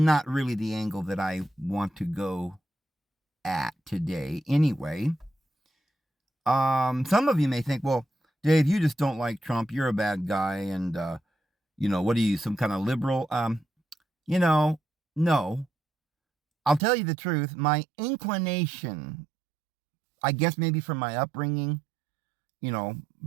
really the angle that I want to go at today. Anyway, some of you may think, well, Dave, you just don't like Trump. You're a bad guy, and what are you, some kind of liberal? No. I'll tell you the truth. My inclination, I guess maybe from my upbringing,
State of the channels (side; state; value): left; drops out; at 16.8 s